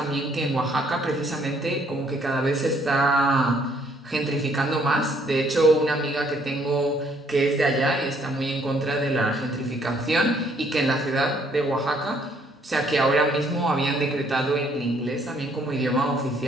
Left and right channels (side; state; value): both; normal; correlation 0.66